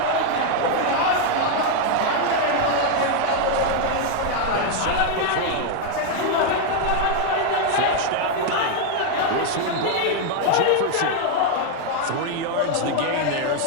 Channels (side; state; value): both; different; correlation 0.01